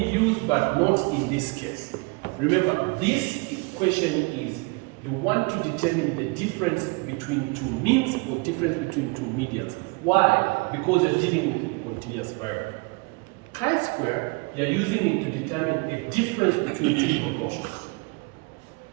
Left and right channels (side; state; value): left; quieter; 28.6 dB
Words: used, but not in this case. Remember, this question is you want to determine the difference between two means or difference between two medians. Why? Because you're dealing with a continuous variable. Chi-square, you're using it to determine a difference between two proportions.